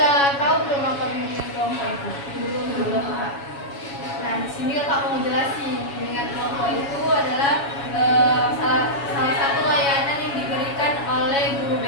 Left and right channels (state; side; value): late; right; 7.2 ms